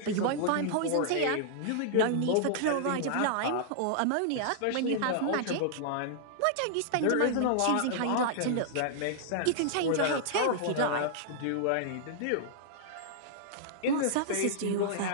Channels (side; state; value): both; different; correlation -0.01